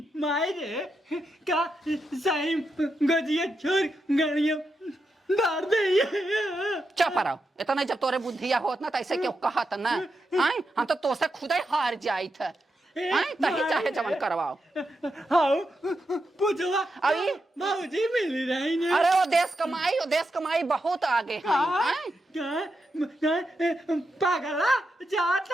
माई रे का सही गजिया छोड़ गाड़ियां डाल दे। चुप रहो इतना जब तोरे बुद्धिया होत ना तैसे क्यों कहत ना हम तो तोसे खुदाई हार जाई थे तही चाहे जवन करवाओ। पूछवा अभी भाजी मिल रही है। अरे वो देश कमाई बहुत आगे है। पागला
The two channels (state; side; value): normal; both; correlation 0.86